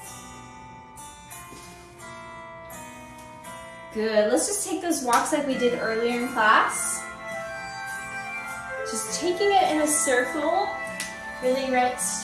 Good, let's just take those walks like we did earlier in class. Just taking it in a circle, really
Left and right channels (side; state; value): both; identical; correlation 1.00